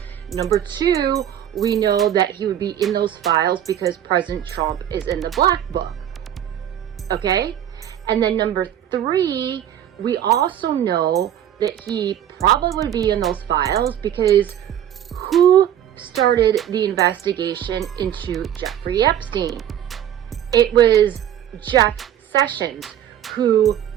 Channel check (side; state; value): left; quieter; 10.5 dB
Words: Number two, we know that he would be in those files because President Trump is in the black book. Okay? And then number three, we also know that he probably would be in those files because who started the investigation into Jeffrey Epstein? It was Jeff Sessions, who